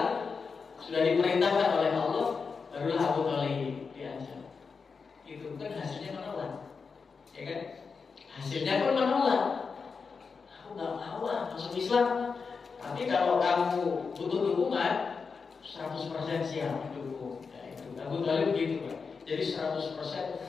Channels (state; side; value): quieter; right; 5.2 dB